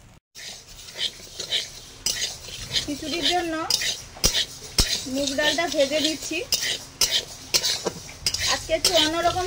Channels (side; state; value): both; identical; correlation 1.00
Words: খিচুড়ির জন্য মুগ ডালটা ভেজে নিচ্ছি। আজকে একটু অন্যরকম